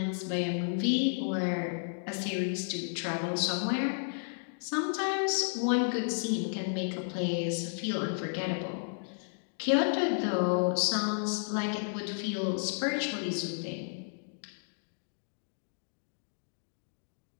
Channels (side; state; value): right; silent; digital silence